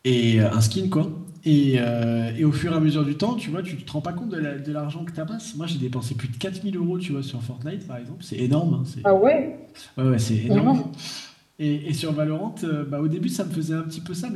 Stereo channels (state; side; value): identical; both; correlation 1.00